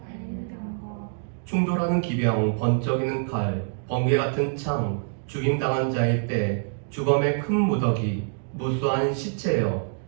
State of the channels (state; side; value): silent; left; digital silence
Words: 달리는 병거. 충돌하는 기병, 번쩍이는 칼, 번개 같은 창, 죽임당한 자의 때, 주검의 큰 무더기, 무수한 시체여,